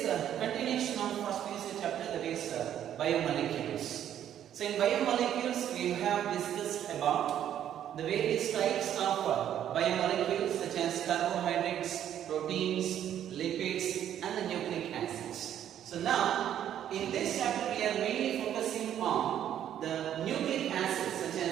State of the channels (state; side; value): quieter; left; 10.5 dB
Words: a continuation of first PUC chapter, that is biomolecules. So in biomolecules we have discussed about the various types of biomolecules such as carbohydrates, proteins, lipids and the nucleic acids. So now, in this chapter we are mainly focusing on the nucleic acids such